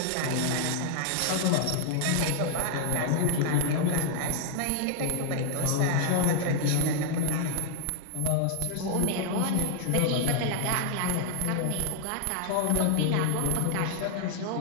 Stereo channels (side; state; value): both; different; correlation -0.01